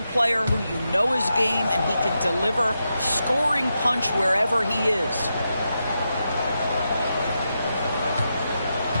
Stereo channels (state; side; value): inverted; both; correlation -0.86